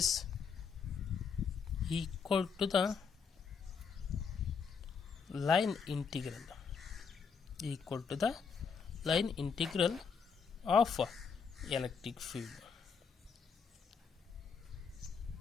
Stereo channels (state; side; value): quieter; right; 6.0 dB